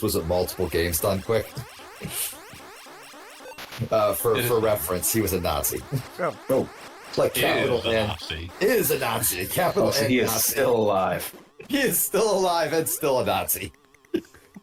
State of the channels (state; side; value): identical; both; correlation 1.00